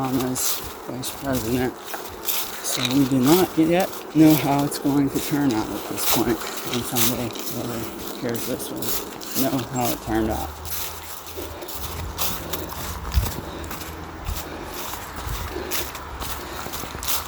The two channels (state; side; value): identical; both; correlation 1.00